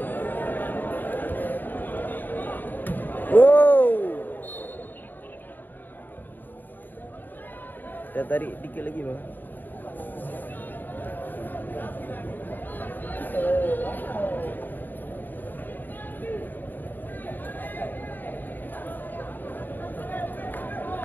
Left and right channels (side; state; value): right; late; 0.090 ms